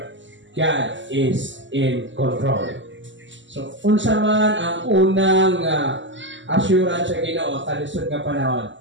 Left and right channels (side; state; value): left; late; 0.54 ms